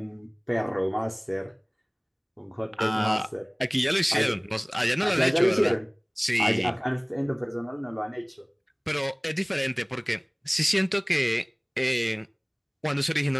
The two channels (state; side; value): identical; both; correlation 1.00